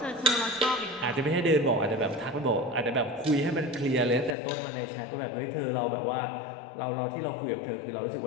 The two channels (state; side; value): drops out; right; at 4.4 s